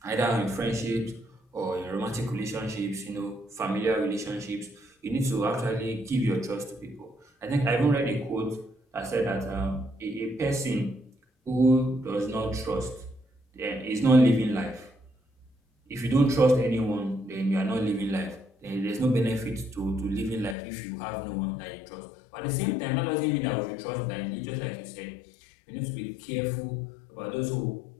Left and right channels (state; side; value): drops out; right; at 20.6 s